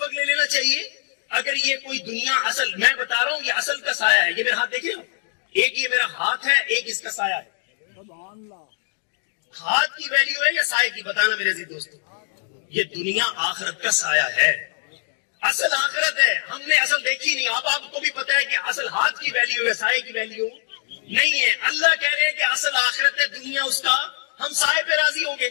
لے لینا چاہیے. اگر یہ کوئی دنیا اصل, میں بتا رہا ہوں یہ اصل کا سایہ ہے, یہ میرے ہاتھ دیکھ رہے ہو, ایک یہ میرا ہاتھ ہے، ایک اس کا سایہ ہے. ہاتھ کی ویلیو ہے یا سائے کی؟ بتانا میرے عزیز دوستو. یہ دنیا آخرت کا سایہ ہے، اصل آخرت ہے. ہم نے اصل دیکھی نہیں. آپ کو بھی پتا ہے کہ اصل ہاتھ کی ویلیو ہے، سائے کی ویلیو نہیں ہے. اللہ کہہ رہے ہیں کہ اصل آخرت ہے دنیا، اس کا ہم سائے پہ راضی ہوں گے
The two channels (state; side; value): silent; right; 63 dB below the other